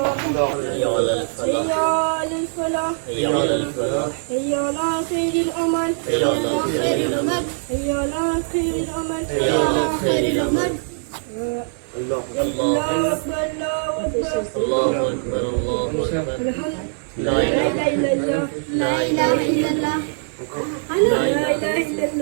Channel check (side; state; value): left; silent; 64 dB below the other